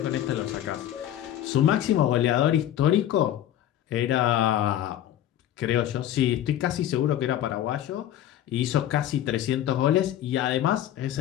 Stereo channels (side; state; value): right; quieter; 11.8 dB